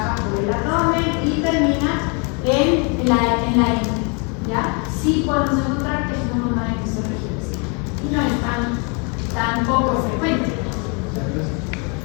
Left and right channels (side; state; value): right; quieter; 34.6 dB